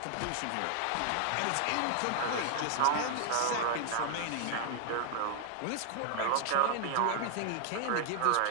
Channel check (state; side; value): different; both; correlation -0.01